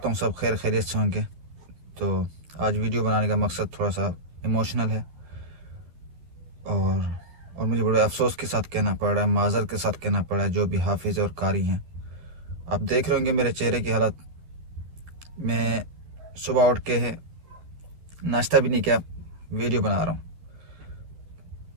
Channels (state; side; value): late; left; 12 ms